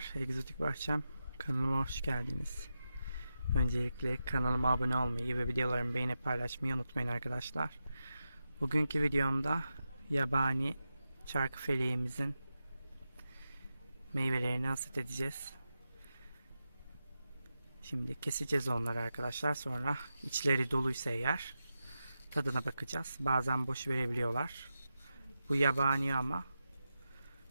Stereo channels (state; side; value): inverted; both; correlation -0.90